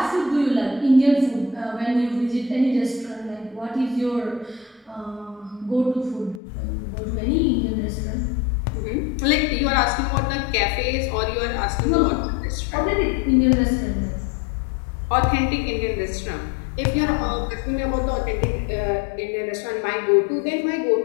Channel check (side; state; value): right; drops out; at 6.4 s